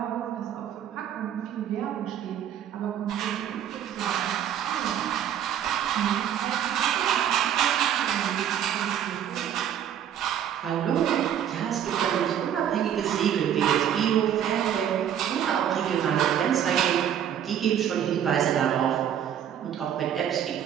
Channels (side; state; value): left; quieter; 9.7 dB